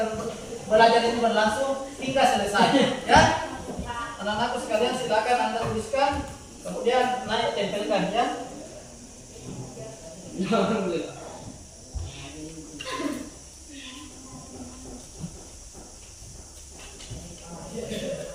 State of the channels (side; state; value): both; identical; correlation 1.00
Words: belajar itu berlangsung hingga selesai. Ya, anak-anakku sekalian silakan Anda tuliskan, kemudian naik tempelkan ya.